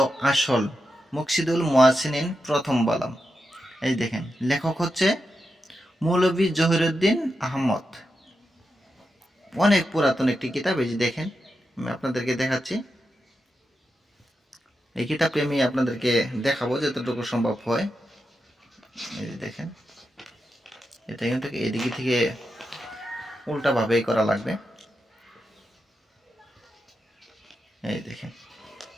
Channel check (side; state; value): both; normal; correlation 0.88